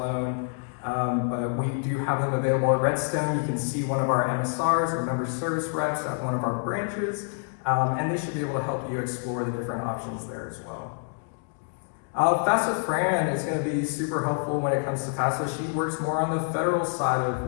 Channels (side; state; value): right; silent; 60 dB below the other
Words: But we do have them available at Redstone. You can see one of our MSRs, or member service reps, at one of our branches, and they should be able to help you explore the different options there as well. FAFSA Fran is going to be super helpful when it comes to FAFSA. She works more on the federal side of